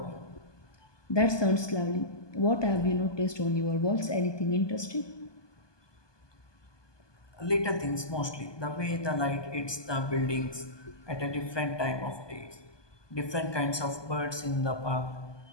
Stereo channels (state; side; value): late; right; 1.2 ms